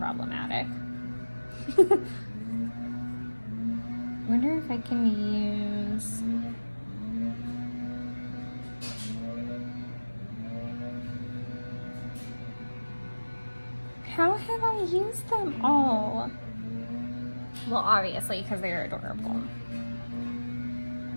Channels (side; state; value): both; inverted; correlation -1.00